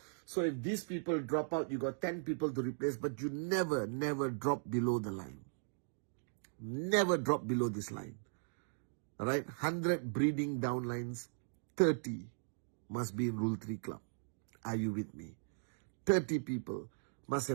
So if these people drop out, you got 10 people to replace. But you never drop below the line. Never drop below this line. All right, 100 breeding downlines, 30 must be in Rule 3 club. Are you with me? 30 people must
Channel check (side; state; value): left; silent; digital silence